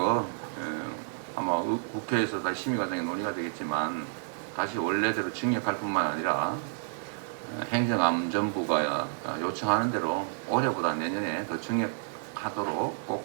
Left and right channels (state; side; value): silent; left; digital silence